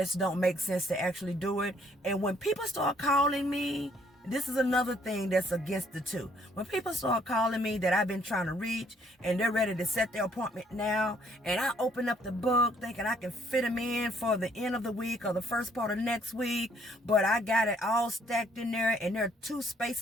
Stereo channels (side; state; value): both; normal; correlation 0.65